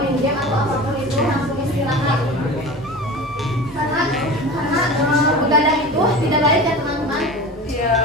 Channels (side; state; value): both; normal; correlation 0.33